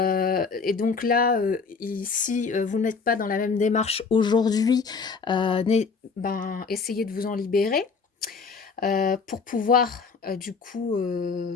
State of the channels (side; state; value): right; quieter; 5.0 dB